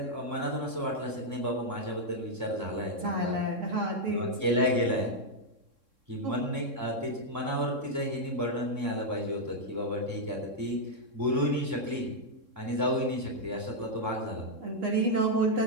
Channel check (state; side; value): late; left; 3.6 ms